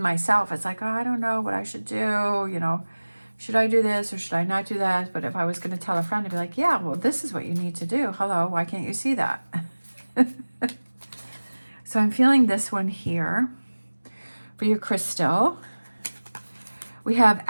myself, it's like, oh, I don't know what I should do. You know, should I do this or should I not do that? But if I was going to tell a friend, I'd be like, yeah, well, this is what you need to do. Hello, why can't you see that? So I'm feeling this one here. For your crystal, we have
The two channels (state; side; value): inverted; both; correlation -1.00